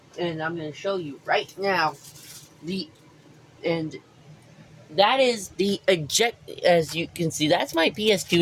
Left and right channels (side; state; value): both; identical; correlation 1.00